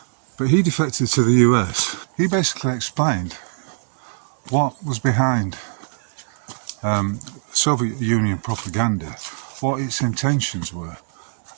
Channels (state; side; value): silent; left; digital silence